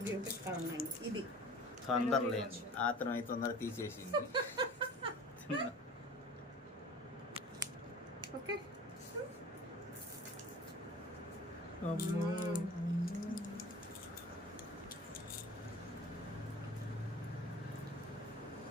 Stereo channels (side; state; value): both; normal; correlation 0.41